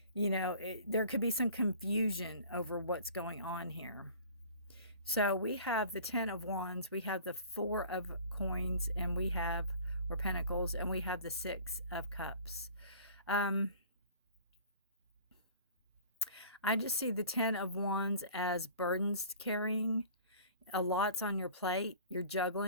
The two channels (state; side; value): inverted; both; correlation -0.46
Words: there could be some confusion over what's going on here. So we have the Ten of Wands, we have the Four of Coins, and we have, or Pentacles, and we have the Six of Cups. I just see the Ten of Wands as burdens carrying. A lot's on your plate. You're